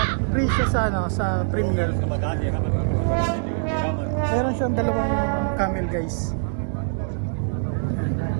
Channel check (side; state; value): left; silent; digital silence